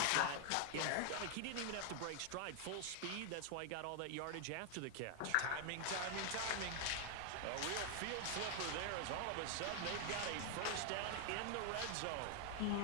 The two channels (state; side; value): different; both; correlation 0.00